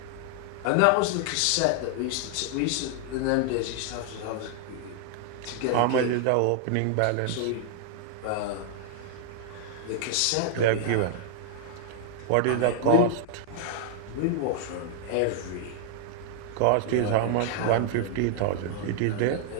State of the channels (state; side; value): different; both; correlation 0.00